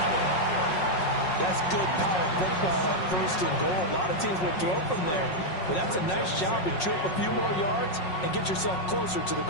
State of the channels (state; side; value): late; right; 5.5 ms